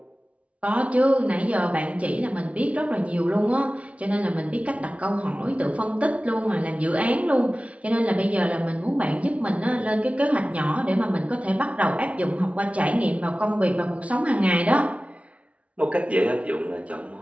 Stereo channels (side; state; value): left; late; 0.064 ms